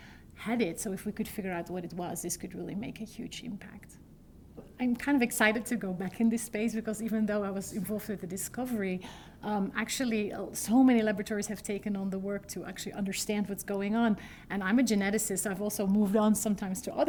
had it. So if we could figure out what it was, this could really make a huge impact. I'm kind of excited to go back in this space because even though I was involved with the discovery, actually so many laboratories have taken on the work to actually understand what's going on. And I'm a geneticist. I've also moved on sometimes to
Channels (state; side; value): identical; both; correlation 1.00